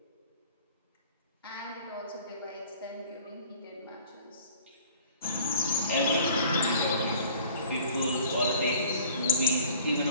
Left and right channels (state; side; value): inverted; both; correlation -0.49